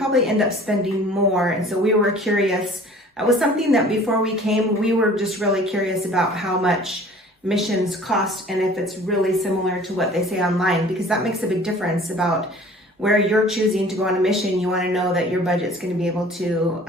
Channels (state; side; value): normal; both; correlation 0.48